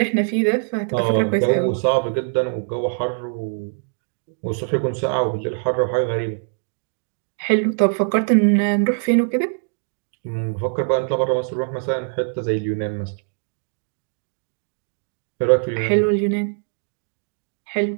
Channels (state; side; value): silent; left; 64 dB below the other